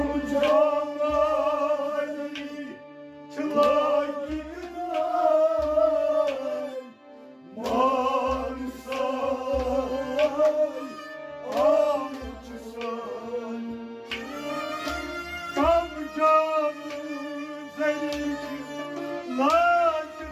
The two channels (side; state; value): both; identical; correlation 1.00